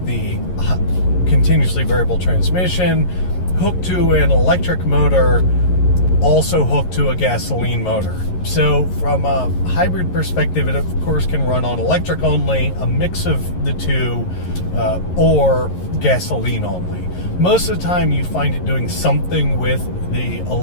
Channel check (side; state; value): right; late; 11 ms